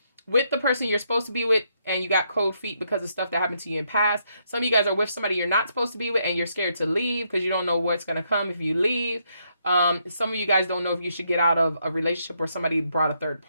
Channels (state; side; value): inverted; both; correlation -0.76